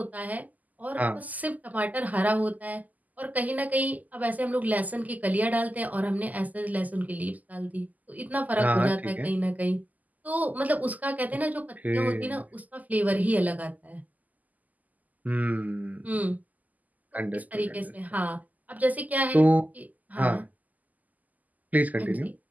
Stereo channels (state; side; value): late; left; 0.080 ms